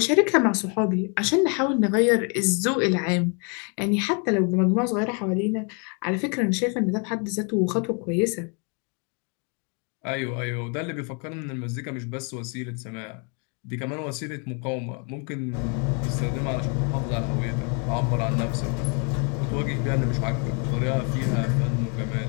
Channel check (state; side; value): quieter; right; 37.0 dB